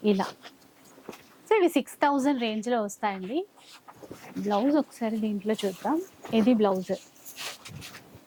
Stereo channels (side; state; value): both; identical; correlation 1.00